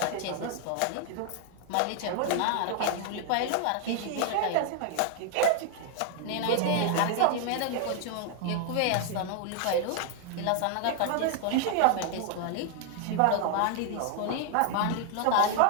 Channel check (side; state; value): both; different; correlation 0.00